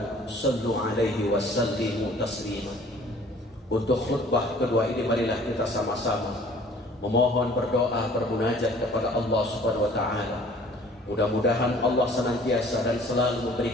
shallu 'alaihi wa sallimu taslima. Untuk khutbah kedua ini marilah kita sama-sama memohon berdoa bermunajat kepada Allah Subhanahu wa taala. Mudah-mudahan Allah senantiasa dan selalu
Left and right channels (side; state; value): both; normal; correlation 0.53